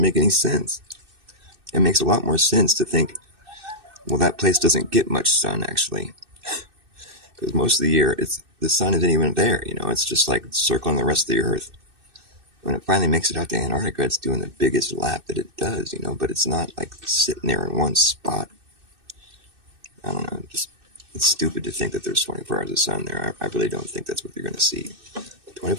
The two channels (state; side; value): late; left; 2.6 ms